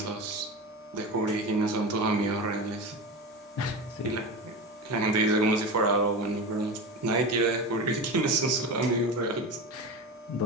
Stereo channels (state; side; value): normal; both; correlation 0.25